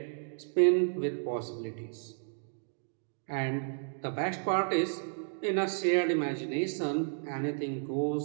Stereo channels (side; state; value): left; silent; digital silence